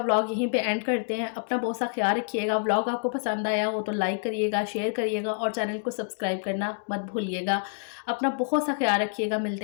व्लॉग यहीं पे एंड करते हैं। अपना बहुत सा ख़्याल रखिएगा। व्लॉग आपको पसंद आया हो तो लाइक करिएगा, शेयर करिएगा, और चैनल को सब्सक्राइब करना मत भूलिएगा। अपना बहुत सा ख़्याल रखिएगा।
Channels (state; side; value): silent; right; digital silence